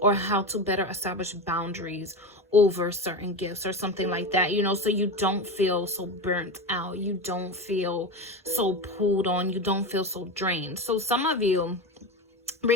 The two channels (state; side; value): normal; both; correlation 0.21